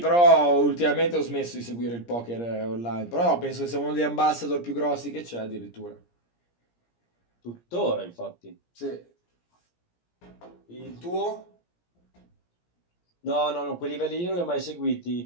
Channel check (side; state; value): right; late; 17 ms